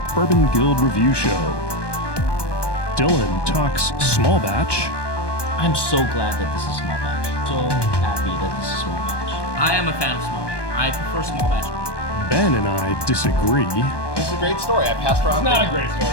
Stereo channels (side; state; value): right; late; 1.2 ms